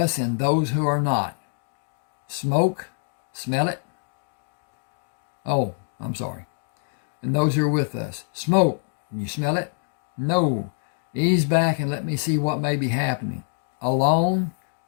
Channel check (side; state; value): right; silent; 62 dB below the other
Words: and those who are not? Smoke? Smell it? Oh, I'm sorry. And those who are with us. Smoke. You smell it? No. Ease back and let me see what may be happening. Alone?